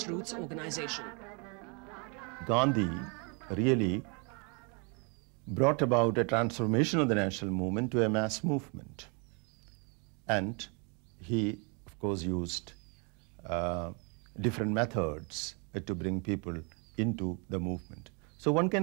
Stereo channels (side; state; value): left; quieter; 34.3 dB